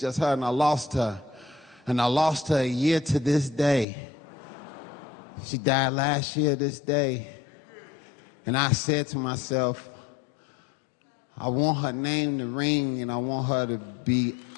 her, and I lost her. And I lost her a year to this day. She died last year this day. And I said to myself, I want her name to ring, and I want her to be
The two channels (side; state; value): right; drops out; at 3.9 s